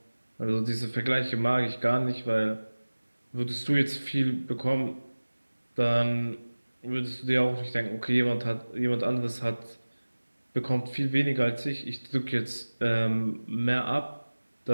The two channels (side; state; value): both; inverted; correlation -1.00